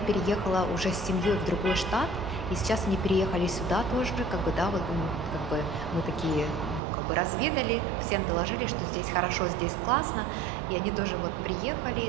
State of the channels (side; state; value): left; drops out; at 6.8 s